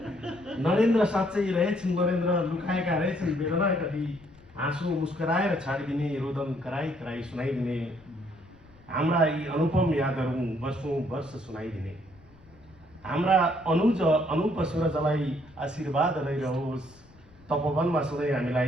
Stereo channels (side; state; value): left; noise; rumble, 26 dB below the sound